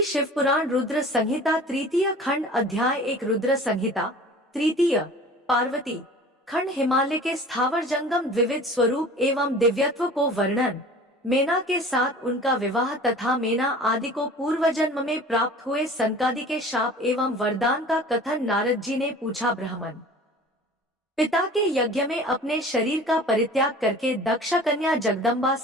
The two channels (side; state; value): both; normal; correlation 0.43